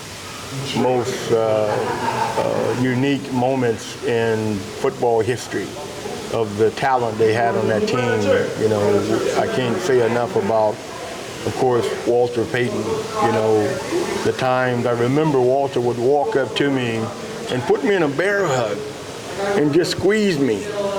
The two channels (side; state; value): both; identical; correlation 1.00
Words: most unique moments in football history of the talent they had on that team. I can't say enough about, of course, Walter Payton. The times I remember Walter would walk up to me and put me in a bear hug and just squeeze me